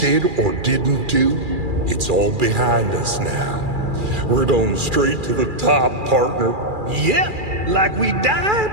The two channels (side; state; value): left; late; 2.4 ms